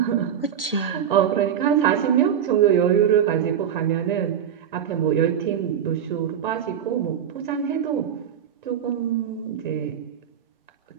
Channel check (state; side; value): quieter; left; 8.9 dB